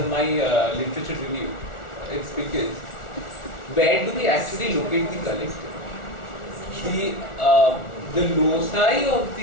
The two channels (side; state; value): right; late; 1.4 ms